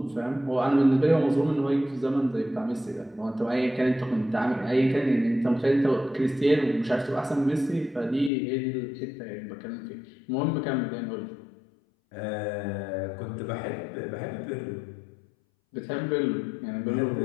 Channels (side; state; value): right; drops out; at 8.3 s